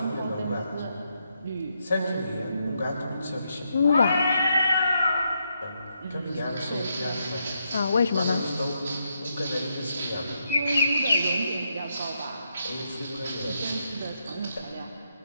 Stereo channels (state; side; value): inverted; both; correlation -0.80